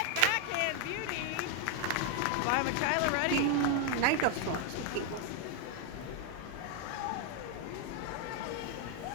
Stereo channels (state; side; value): different; both; correlation 0.01